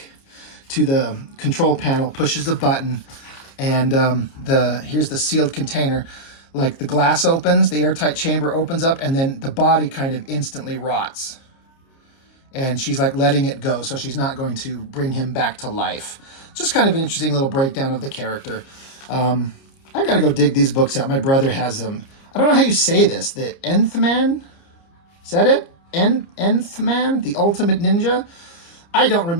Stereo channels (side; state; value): right; late; 30 ms